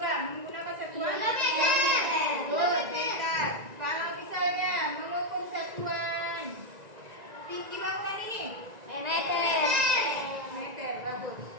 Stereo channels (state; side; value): late; left; 1.9 ms